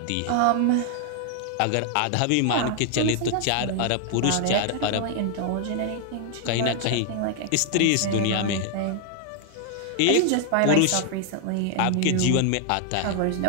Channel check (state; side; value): different; both; correlation 0.00